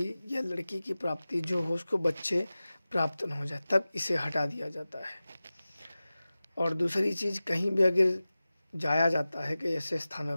या लड़की की प्राप्ति जो हो, उसको बच्चे प्राप्त न हो जाए, तब इसे हटा दिया जाता है। और दूसरी चीज़, कहीं भी अगर जाया जाता है कि ऐसे स्थानों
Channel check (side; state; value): both; inverted; correlation -0.96